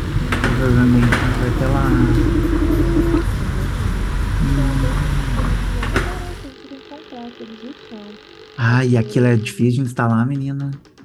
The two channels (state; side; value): identical; both; correlation 1.00